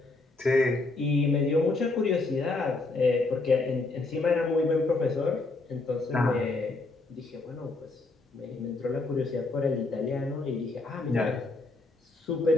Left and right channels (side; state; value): right; quieter; 3.3 dB